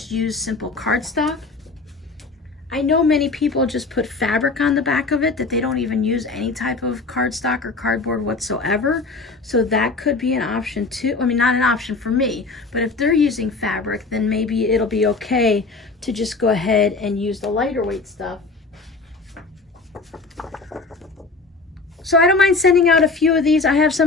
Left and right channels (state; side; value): quieter; right; 3.9 dB